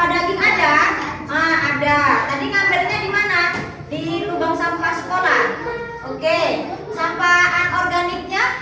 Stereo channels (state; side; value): identical; both; correlation 1.00